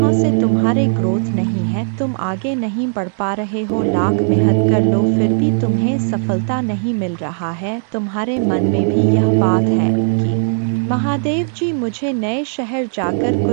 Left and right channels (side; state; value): left; silent; 62 dB below the other